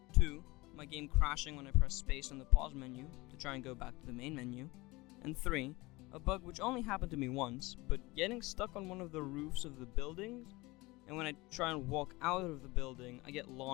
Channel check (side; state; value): right; quieter; 22.2 dB